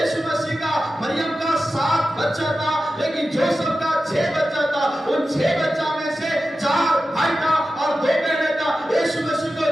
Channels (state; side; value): normal; both; correlation 0.93